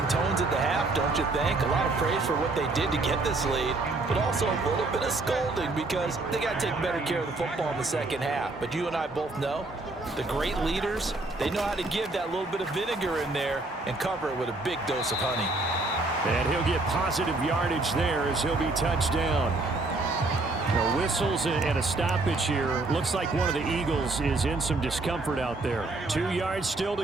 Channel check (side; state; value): left; quieter; 3.2 dB